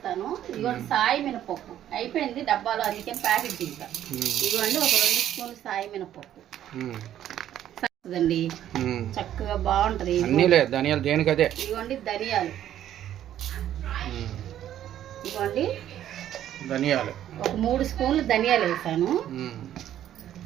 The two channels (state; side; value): quieter; left; 11.4 dB